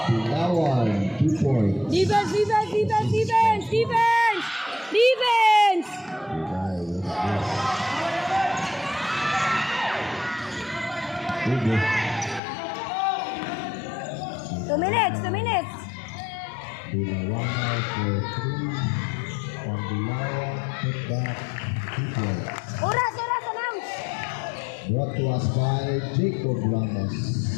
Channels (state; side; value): drops out; right; at 12.4 s